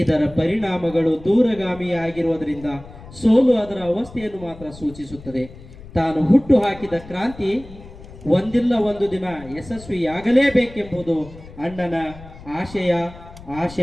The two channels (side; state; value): left; noise; rumble, 18 dB below the sound